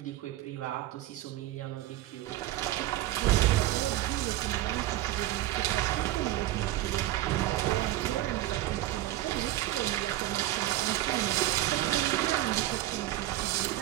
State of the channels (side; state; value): left; quieter; 15.1 dB